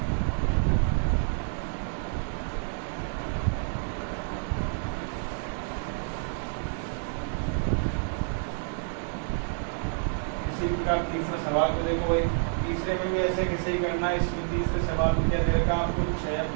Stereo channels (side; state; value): left; silent; 59 dB below the other